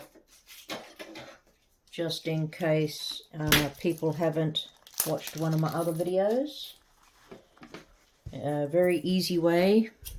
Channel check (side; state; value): both; identical; correlation 1.00